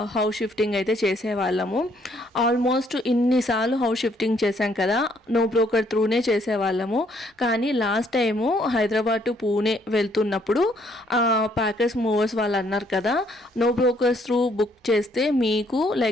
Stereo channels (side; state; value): both; normal; correlation 0.67